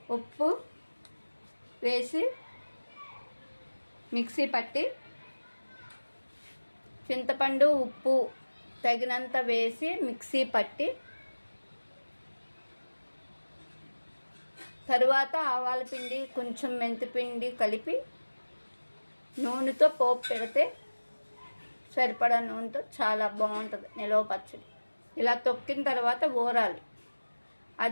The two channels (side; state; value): both; inverted; correlation -1.00